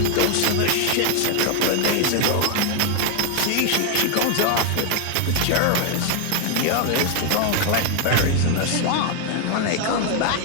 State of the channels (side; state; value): both; different; correlation 0.01